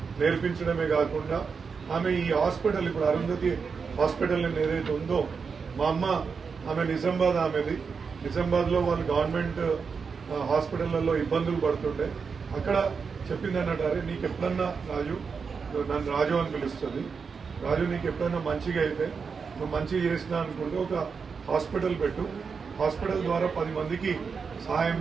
నేర్పించడమే కాకుండా ఆమె ఈ హాస్పిటల్, ఇప్పుడు అరుంధతి హాస్పిటల్ ఏదైతే ఉందో, మా అమ్మ ఆమె నిజామాబాద్ లో వాళ్ళు గవర్నమెంట్ హాస్పిటళ్లలో ఇబ్బందులు పడుతుండే. అక్కడ చెప్పింది అన్నట్టు, అరే నీకు ఎప్పుడన్నా రాజు, నన్ను రాజు అని పిలుస్తుంది, రాజు నీకు ఎప్పుడన్నా మంచిగా అయితే నువ్వు మంచిగా చేసినా అనుకుంటే ఒక హాస్పిటల్ పెట్టు, హాస్పిటల్ ద్వారా 10 మందికి సహాయం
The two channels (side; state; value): left; quieter; 5.5 dB